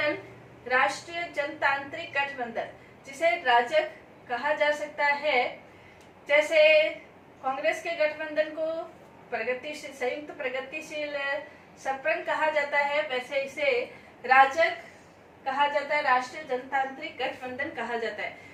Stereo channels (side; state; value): both; identical; correlation 1.00